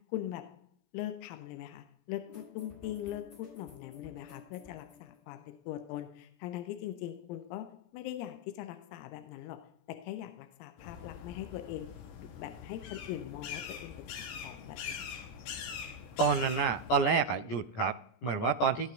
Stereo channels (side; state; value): right; late; 17 ms